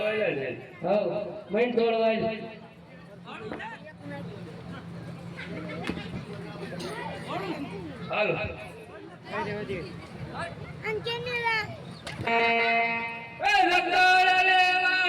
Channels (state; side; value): identical; both; correlation 1.00